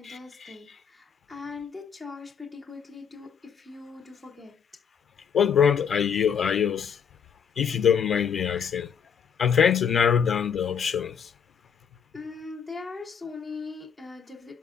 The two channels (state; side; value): quieter; right; 7.3 dB